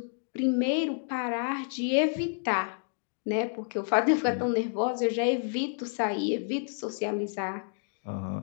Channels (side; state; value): right; silent; digital silence